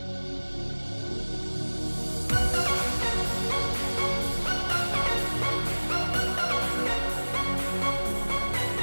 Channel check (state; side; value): inverted; both; correlation -1.00